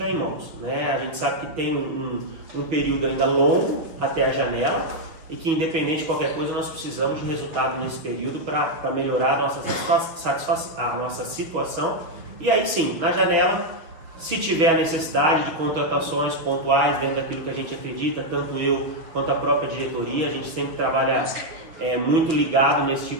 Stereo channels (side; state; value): left; late; 6.5 ms